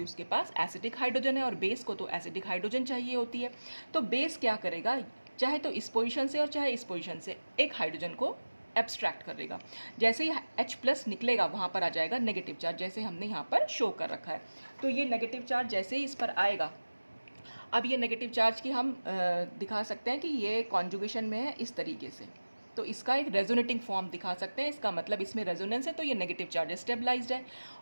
उसके पास एसिडिक हाइड्रोजन है और बेस को तो एसिडिक हाइड्रोजन चाहिए होती है। तो बेस क्या करेगा, चाहे तो इस पोजीशन से और चाहे इस पोजीशन से एक हाइड्रोजन को एब्स्ट्रैक्ट कर देगा। जैसे ही H+ निकलेगा वहाँ पर आ जाएगा नेगेटिव चार्ज, जैसे हमने यहाँ पर शो कर रखा है। तो ये नेगेटिव चार्ज जैसे ही इस पर आएगा, अब ये नेगेटिव चार्ज की हम दिखा सकते हैं कि ये कॉन्जुगेशन में है इस तरीके से, तो इसका एक रेजोनेटिंग फॉर्म दिखा सकते हैं। इसका मतलब इसमें रेजोनेंस है, तो ये नेगेटिव चार्ज स्टेबलाइज्ड है।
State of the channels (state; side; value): inverted; both; correlation -1.00